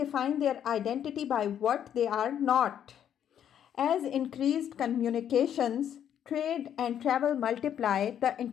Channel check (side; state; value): right; quieter; 9.6 dB